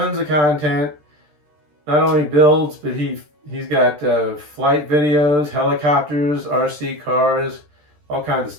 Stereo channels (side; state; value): left; late; 13 ms